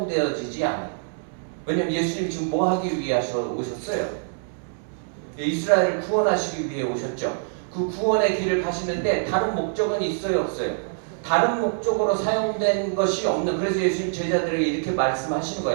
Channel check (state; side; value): silent; left; 62 dB below the other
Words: 않아요. 왜냐면 예수님이 지금 뭐 하기 위해 오셨어요? 이스라엘을 구원하시기 위해 오셨죠. 그 구원의 길을 가시는데 다른 목적은 있어요, 없어요? 다른 목적으로 사용된 것이 없는, 그래서 예수님 제자들에게 이렇게 말씀하시는